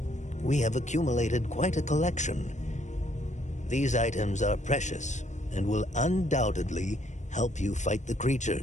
We have accumulated quite a collection. These items are precious and will undoubtedly help you fight the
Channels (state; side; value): late; right; 0.34 ms